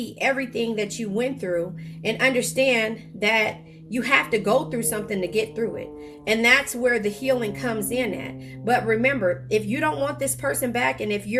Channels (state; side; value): identical; both; correlation 1.00